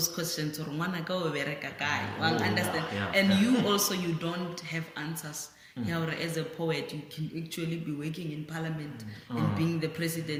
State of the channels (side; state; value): both; identical; correlation 1.00